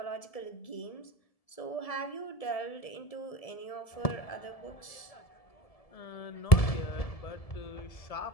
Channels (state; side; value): late; right; 1.7 ms